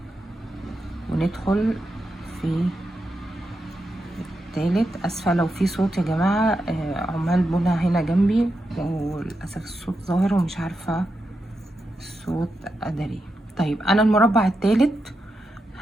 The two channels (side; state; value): both; normal; correlation 0.87